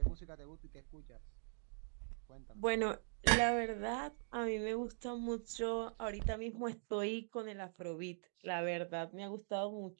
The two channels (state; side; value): silent; left; digital silence